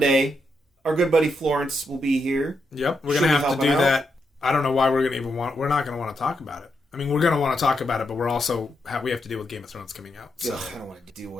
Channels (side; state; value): both; normal; correlation 0.82